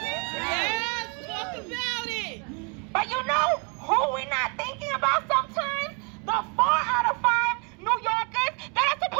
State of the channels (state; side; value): quieter; left; 35.0 dB